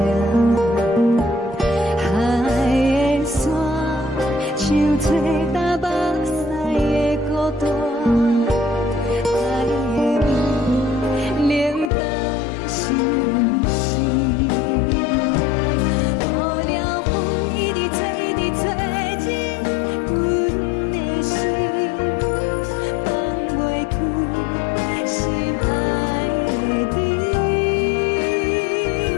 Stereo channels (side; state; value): right; drops out; at 11.9 s